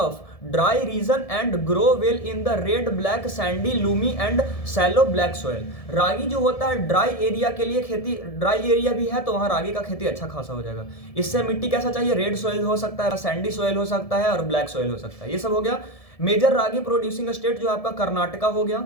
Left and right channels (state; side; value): late; right; 1.7 ms